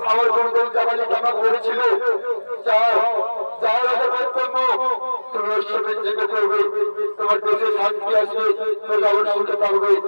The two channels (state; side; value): inverted; both; correlation -1.00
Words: আমার বন্ধু জামালি জামা করেছিল যাওয়ার আগে বক্তব্য তুমি ওর সাথে জেগে করবে, তোমার দেশে শান্তি আসবে, প্রজাবর সুখে থাকবে,